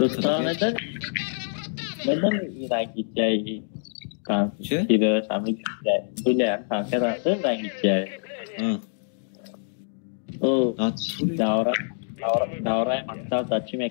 neden? Il carro è un rottame! Neden İran gideceği? Kan, Şey? kira sami gideceği. Böyle kanka nasıl İran gideceği? Ha. O At. Davra maktab dachi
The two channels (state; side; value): silent; right; digital silence